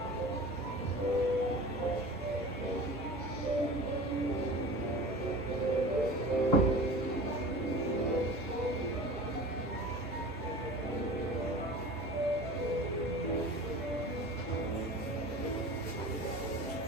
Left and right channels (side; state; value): both; normal; correlation 0.37